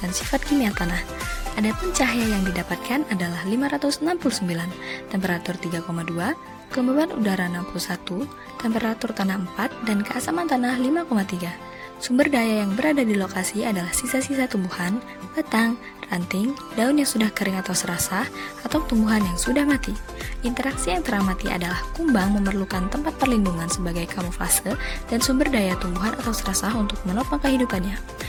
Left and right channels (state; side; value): identical; both; correlation 1.00